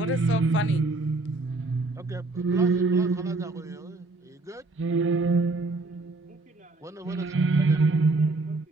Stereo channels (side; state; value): left; quieter; 3.2 dB